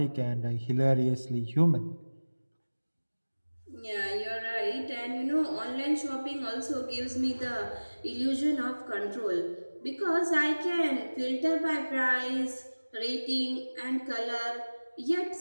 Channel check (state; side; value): inverted; both; correlation -1.00